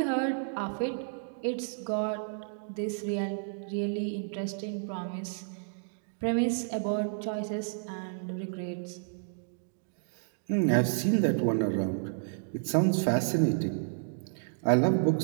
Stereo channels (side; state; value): left; silent; digital silence